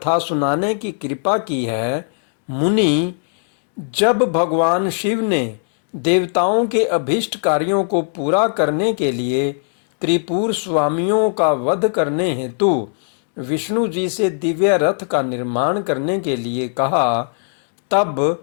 सुनाने की कृपा की है। मुनि, जब भगवान शिव ने देवताओं के अभीष्ट कार्यों को पूरा करने के लिए त्रिपुर स्वामियों का वध करने हेतु विष्णु जी से दिव्य रथ का निर्माण करने के लिए कहा,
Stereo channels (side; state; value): right; silent; digital silence